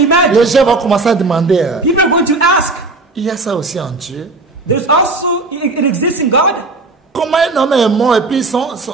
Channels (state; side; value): quieter; left; 3.5 dB